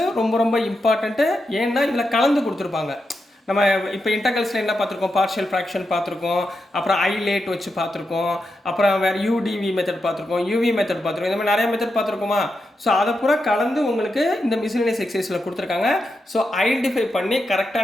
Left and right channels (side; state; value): both; normal; correlation 0.87